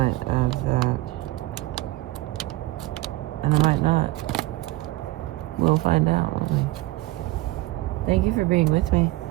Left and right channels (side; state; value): left; quieter; 18.9 dB